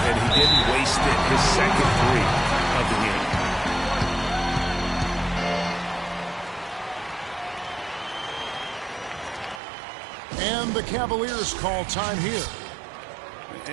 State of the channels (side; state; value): left; drops out; at 9.6 s